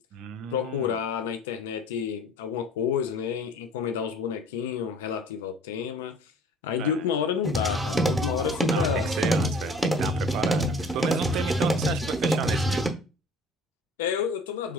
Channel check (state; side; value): normal; both; correlation 0.48